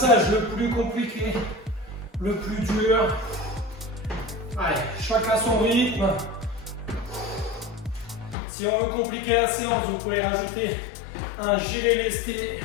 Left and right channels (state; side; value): drops out; right; at 8.3 s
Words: le plus compliqué, le plus dur. Allez, chacun son rythme. Si on veut compliquer la séance, vous pouvez rajouter un gilet lesté